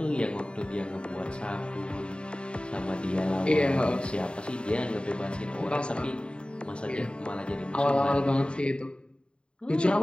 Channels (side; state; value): right; late; 0.053 ms